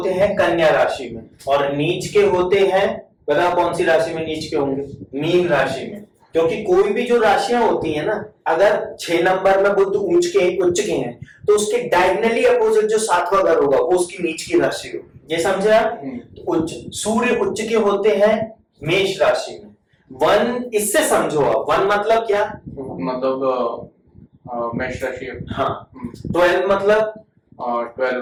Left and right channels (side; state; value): both; identical; correlation 1.00